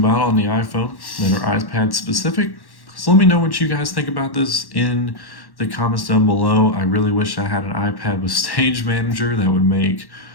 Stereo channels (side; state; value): right; late; 1.1 ms